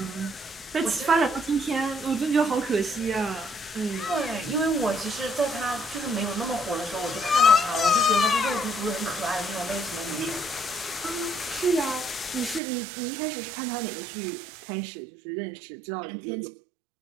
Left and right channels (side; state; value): left; drops out; at 12.6 s